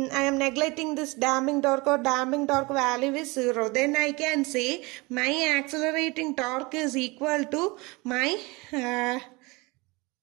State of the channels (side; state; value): left; quieter; 24.9 dB